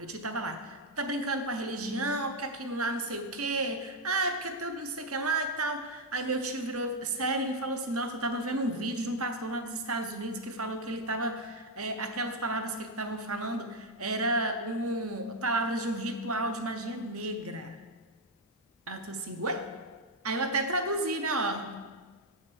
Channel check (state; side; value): normal; both; correlation 0.03